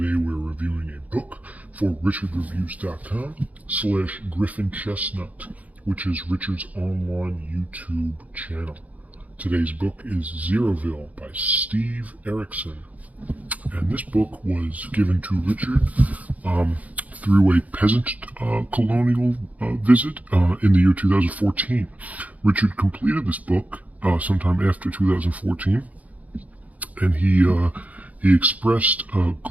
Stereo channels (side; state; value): left; late; 0.073 ms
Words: we're reviewing a book for richardreviews.com/Griffin Chestnut, which is Richard's online YouTube channel. Today's book is Zeroville by Steve Erickson. And this book was given to Richard through a peasant colonial visit in the year 2014. Richard completed this book sometime after 2014. And he expressed